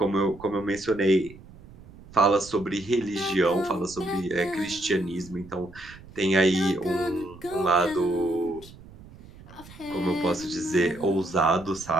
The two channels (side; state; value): right; noise; rumble, 20 dB below the sound